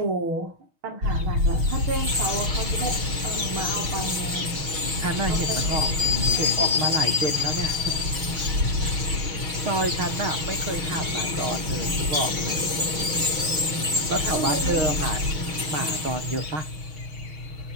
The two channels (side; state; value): left; late; 6.4 ms